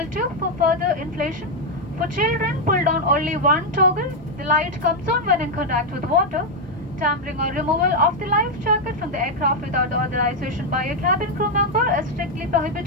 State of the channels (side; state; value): both; normal; correlation 0.01